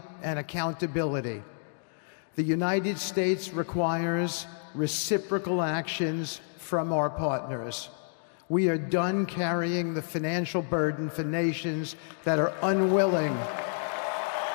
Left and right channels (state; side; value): silent; right; digital silence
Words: and accountability. The United States requires reciprocal actions from our partners. We are done carrying the financial burden for nations that are unwilling